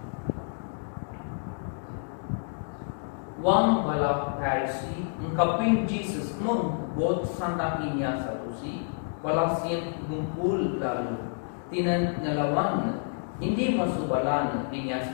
Wang balap Pharisee ungkapin Jesus mengbot santak inya salusi Balasian gumpul lalu tinan ngelawan hindi masuk balan dinya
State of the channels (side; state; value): right; silent; digital silence